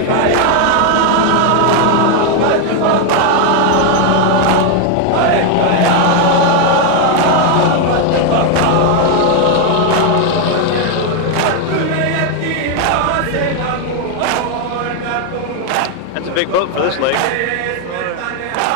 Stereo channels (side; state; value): both; different; correlation 0.01